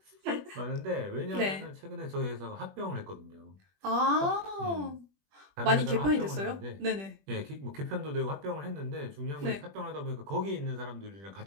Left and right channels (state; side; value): late; left; 21 ms